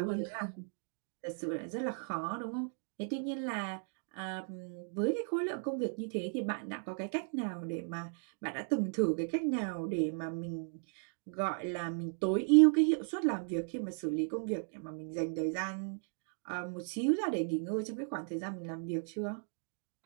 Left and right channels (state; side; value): silent; left; 54 dB below the other